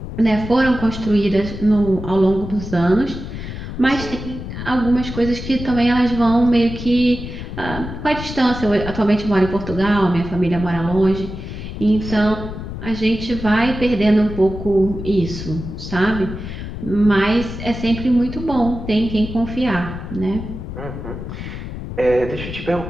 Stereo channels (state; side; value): noise; left; rumble, 8 dB below the sound